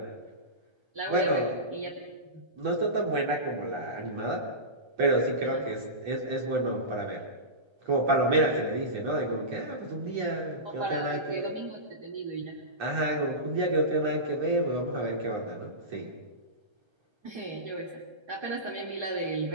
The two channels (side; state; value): left; late; 1.3 ms